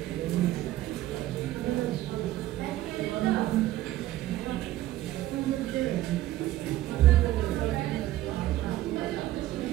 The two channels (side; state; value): left; quieter; 14.9 dB